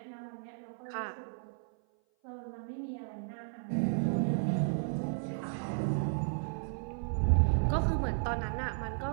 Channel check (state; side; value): silent; left; 55 dB below the other